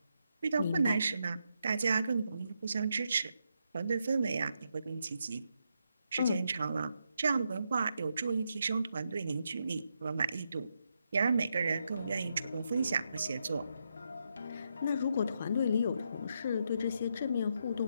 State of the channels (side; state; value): both; inverted; correlation -0.82